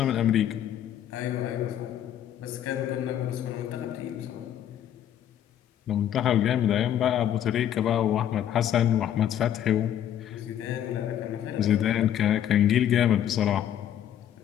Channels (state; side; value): quieter; right; 10.5 dB